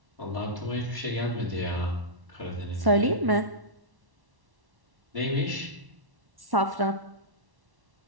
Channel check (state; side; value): late; left; 1.1 ms